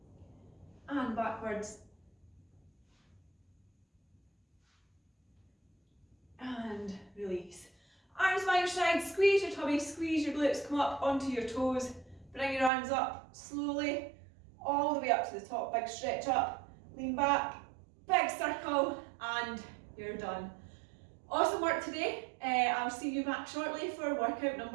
And backwards. And release. Arms by your side, squeeze your tummy, squeeze your glutes, come up onto your toes. Bring your arms up slowly, all the way up to the top. Big stretch up, lean back, big circle, and you're done. Awesome work today. I'll see you back shortly for workout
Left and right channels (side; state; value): left; drops out; at 12.7 s